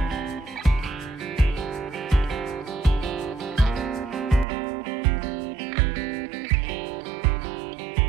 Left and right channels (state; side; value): drops out; left; at 4.5 s